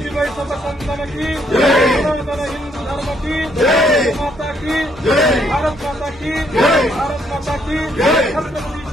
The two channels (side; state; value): both; normal; correlation 0.70